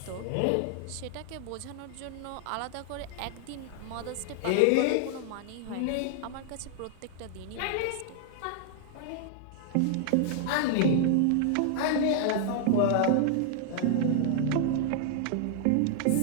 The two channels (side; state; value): both; different; correlation -0.01